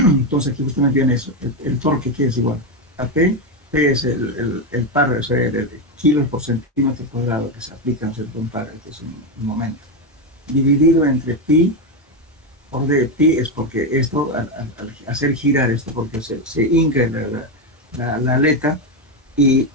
aquí justamente viene eso, el torque que es igual a P es el par, o sea, el kilos por centímetro cuadrado que se aplica en cierto par, que es un momento, dividido entre pi. Por de pi es porque esto, al hacer girar esto, porque se hinca la aleta y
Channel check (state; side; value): normal; both; correlation 0.09